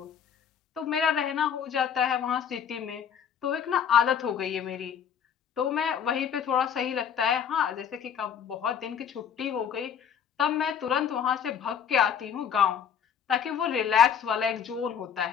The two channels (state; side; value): quieter; right; 7.9 dB